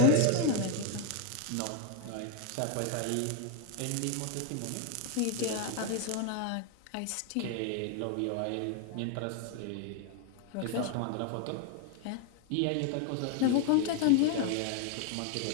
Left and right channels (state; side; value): different; both; correlation 0.01